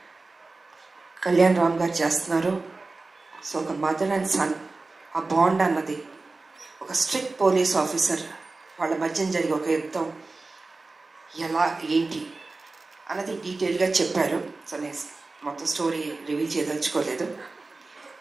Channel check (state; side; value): quieter; left; 3.5 dB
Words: కళ్యాణ్ రామ్ గారు చేస్తున్నారు, సో ఒక మదర్ అండ్ సన్ ఆ బాండ్ అన్నది, ఒక స్ట్రిక్ట్ పోలీస్ ఆఫీసర్ వాళ్ళ మధ్యన జరిగే ఒక యుద్ధం ఎలా ఏంటి అన్నది డీటెయిల్గా చెప్పారు. సో నేను మొత్తం స్టోరీ రివీల్ చేయదలుచుకోలేదు.